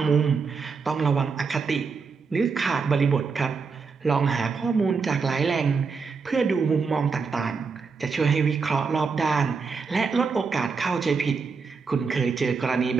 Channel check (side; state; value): left; quieter; 5.1 dB